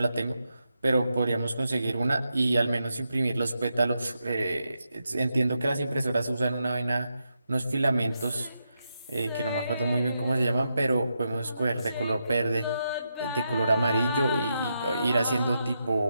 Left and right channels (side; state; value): both; inverted; correlation -0.85